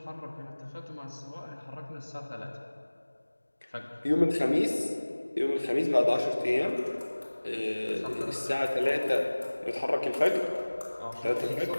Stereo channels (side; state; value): both; inverted; correlation -1.00